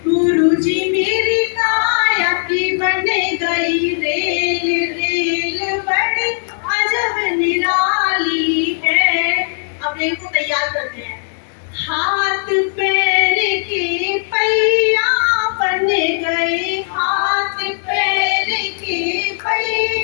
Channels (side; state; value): right; silent; digital silence